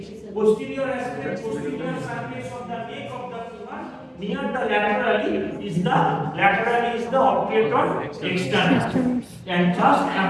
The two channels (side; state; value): both; identical; correlation 1.00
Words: posterior surface of the neck of the femur near the laterally is the obturator externus and just